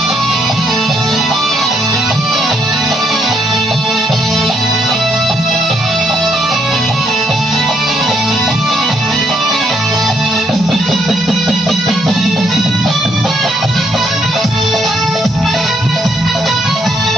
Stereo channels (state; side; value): normal; both; correlation 0.72